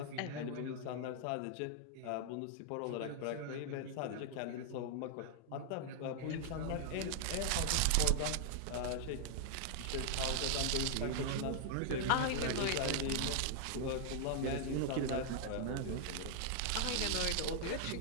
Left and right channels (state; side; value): different; both; correlation -0.01